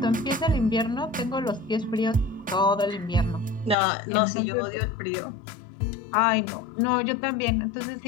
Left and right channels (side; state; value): right; drops out; at 3.8 s